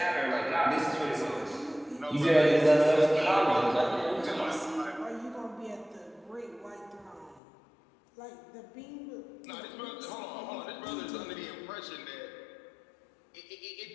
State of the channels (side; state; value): right; drops out; at 7.4 s